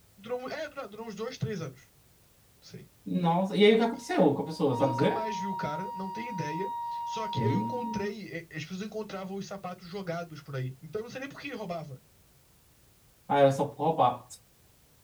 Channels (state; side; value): identical; both; correlation 1.00